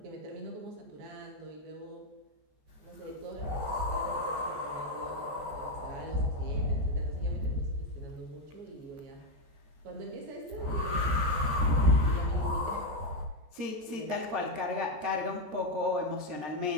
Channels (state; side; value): late; left; 14 ms